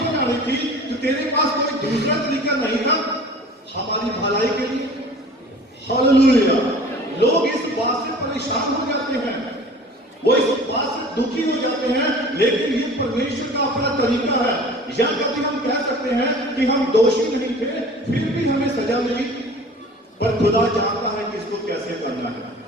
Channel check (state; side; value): normal; both; correlation 0.44